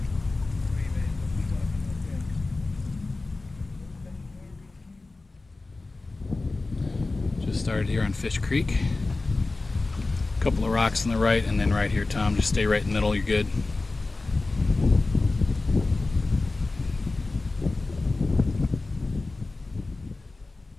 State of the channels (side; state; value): right; quieter; 3.4 dB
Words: Just started here on Fish Creek. A couple of rocks on the right, and then right here, Tom. Just stay right in the middle, you're good.